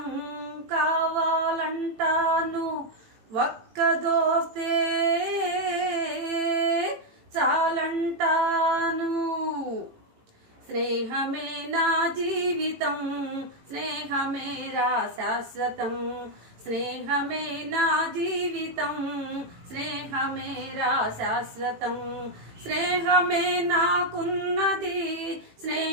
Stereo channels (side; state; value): left; late; 18 ms